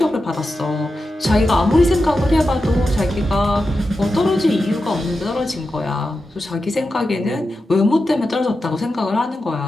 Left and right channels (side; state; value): both; normal; correlation 0.90